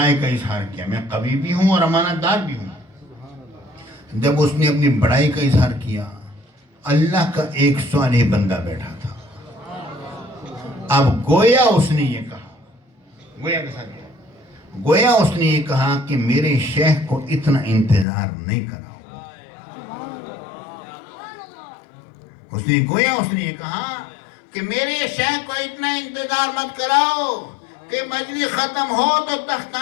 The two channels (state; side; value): drops out; right; at 18.1 s